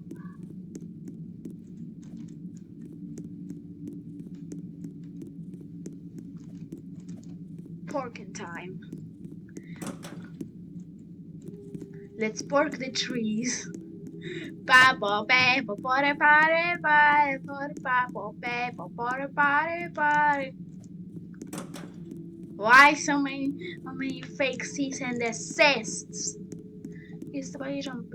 Porking time. Let's pork the trees. Why so many fake cease and desists? He's the way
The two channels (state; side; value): identical; both; correlation 1.00